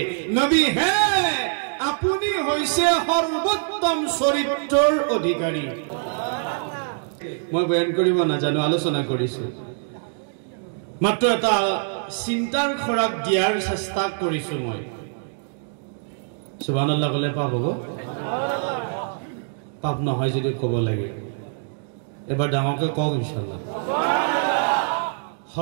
নবী হে আপুনি হৈছে সৰ্বোত্তম চৰিত্ৰৰ অধিকাৰী মই বয়ান কৰিব নাজানো আলোচনা কৰিছো মাত্ৰ এটা চিন্তাৰ খৰাক দিয়াৰ চেষ্টা কৰিছো মই সুবহানাল্লাহ কলে পাপ হ'ব পাপ নহয় যদি ক'ব লাগে এবাৰ ডাঙৰকৈ কওক ইনশাআল্লাহ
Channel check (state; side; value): silent; left; digital silence